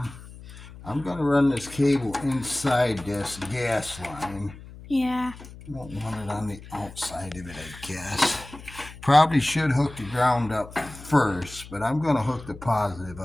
I'm going to run this cable inside this gas line. Yeah. I don't want it on the outside of it, I guess. Probably should hook the ground up first, but I'm going to hook the positive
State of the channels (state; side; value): noise; left; hum, 16 dB below the sound